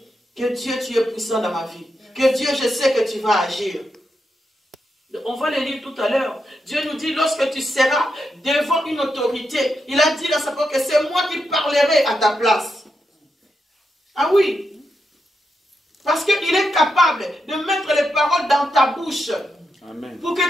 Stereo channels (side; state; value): both; normal; correlation 0.85